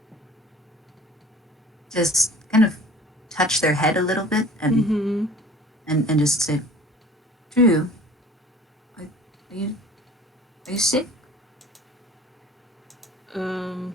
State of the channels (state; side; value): normal; both; correlation 0.47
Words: kind of touch their head a little bit Mm-hmm. and just say, Drew, are you are you sick? Um,